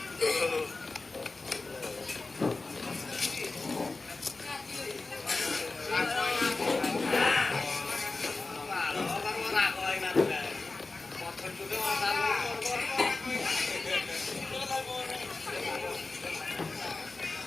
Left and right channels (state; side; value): quieter; right; 3.6 dB